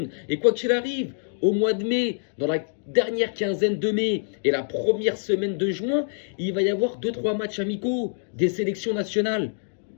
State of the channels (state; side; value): silent; right; digital silence